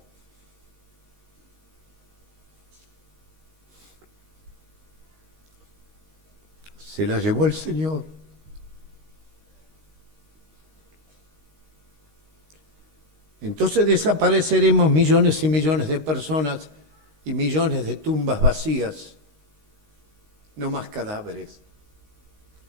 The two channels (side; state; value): left; late; 13 ms